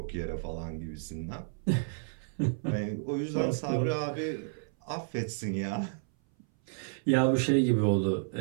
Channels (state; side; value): silent; left; 57 dB below the other